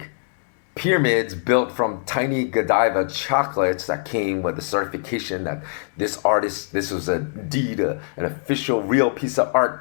pyramids built from tiny Godiva chocolates that came with a certification that this was indeed an official real piece of art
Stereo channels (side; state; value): right; silent; digital silence